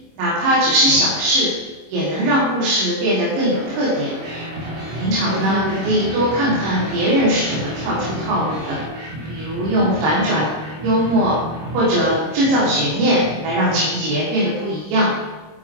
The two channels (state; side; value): late; left; 26 ms